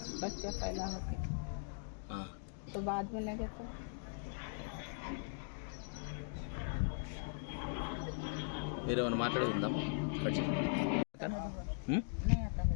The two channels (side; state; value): right; silent; digital silence